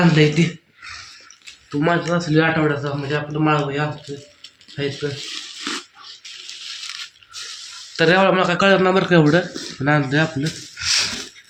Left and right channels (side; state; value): both; identical; correlation 1.00